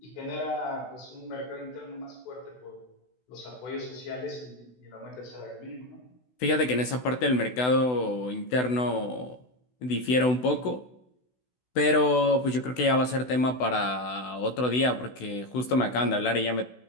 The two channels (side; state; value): right; late; 16 ms